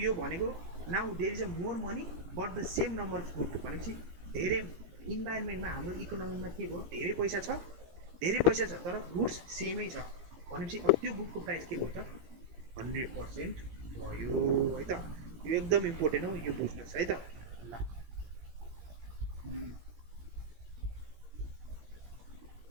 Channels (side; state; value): left; late; 17 ms